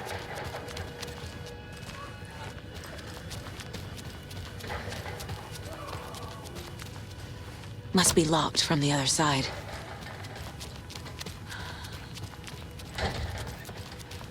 Must be locked from the other side.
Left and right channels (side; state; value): both; identical; correlation 1.00